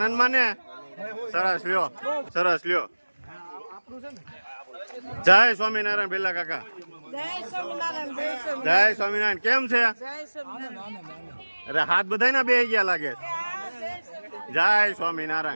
માને સરસ લ્યો સરસ લ્યો. જય સ્વામિનારાયણ ભેલા કાકા જય સ્વામિનારાયણ. કેમ છે અરે હાથ બધાય ના બે ગયા લાગે. જય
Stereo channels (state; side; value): inverted; both; correlation -1.00